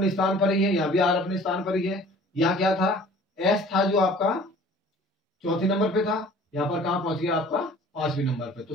स्थान पर ही है, यहाँ भी R अपने स्थान पर ही है। यहाँ क्या था, S था जो आपका चौथे नंबर पे था, यहाँ पर कहाँ पहुंच गया आपका 5वें नंबर पे। तो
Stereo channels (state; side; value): normal; both; correlation 0.49